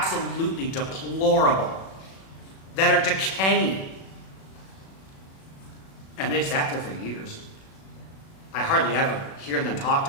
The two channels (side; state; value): right; late; 37 ms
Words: deplorable, that are decaying. And they've sat there for years. I hardly ever hear them talked